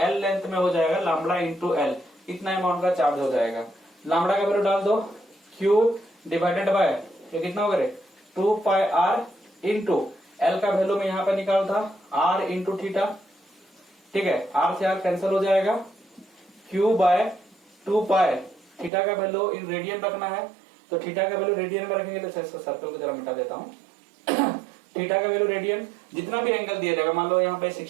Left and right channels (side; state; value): left; drops out; at 18.9 s